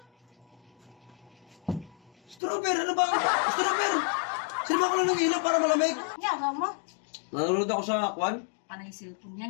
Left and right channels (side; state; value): right; drops out; at 2.4 s